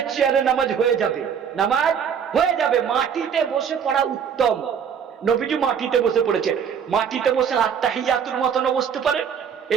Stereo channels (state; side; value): quieter; left; 7.5 dB